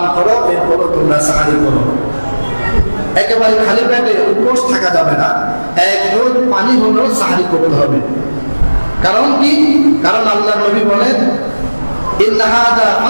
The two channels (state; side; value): inverted; both; correlation -1.00